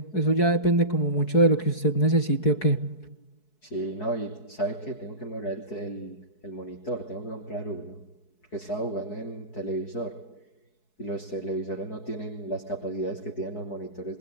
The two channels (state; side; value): late; right; 4.7 ms